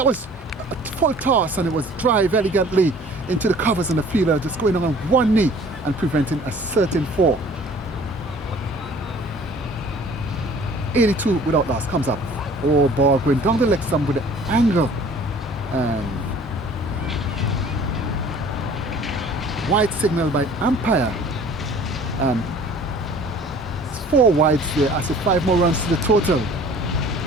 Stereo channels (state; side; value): normal; both; correlation 0.50